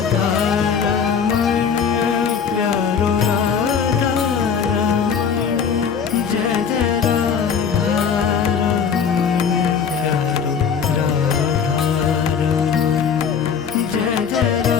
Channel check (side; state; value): right; quieter; 6.7 dB